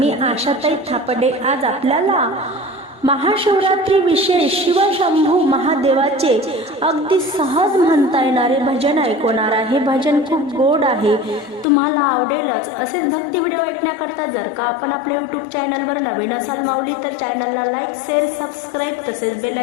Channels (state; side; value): drops out; right; at 11.7 s